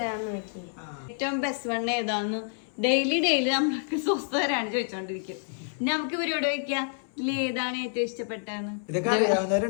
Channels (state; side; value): silent; right; 59 dB below the other